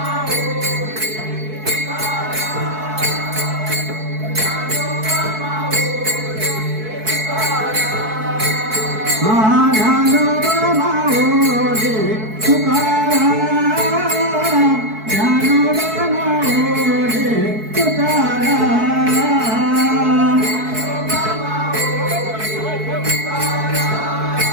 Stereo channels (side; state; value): left; late; 4.6 ms